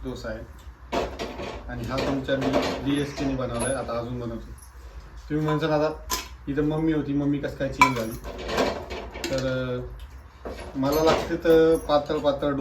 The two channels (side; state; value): both; identical; correlation 1.00